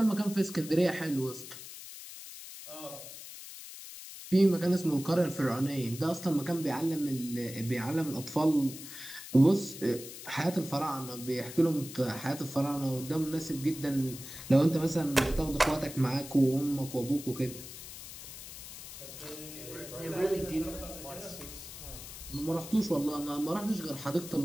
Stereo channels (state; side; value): noise; left; hiss, 12 dB below the sound